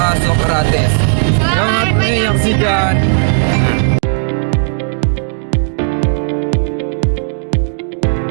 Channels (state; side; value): silent; left; digital silence